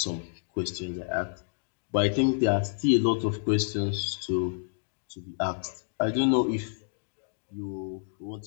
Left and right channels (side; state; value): right; silent; digital silence